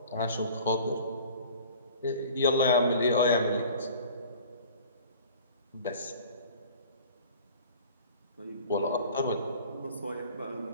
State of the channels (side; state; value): both; inverted; correlation -0.46